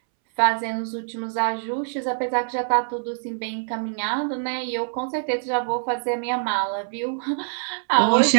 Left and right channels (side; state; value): left; silent; 62 dB below the other